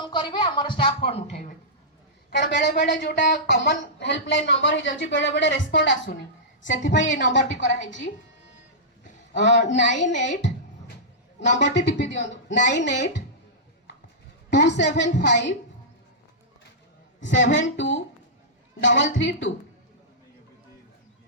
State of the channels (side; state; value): both; normal; correlation -0.15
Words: करेंगे आम स्टाफ फोन उठेबे कारण बेले बेले जोटा कॉमन हेल्पलाइन नंबर हो जाउची बेले बेले रेस्पोंड आसुनी से नंबर टी करा 98 नंबर टी टिपि दियंतु 9827572332।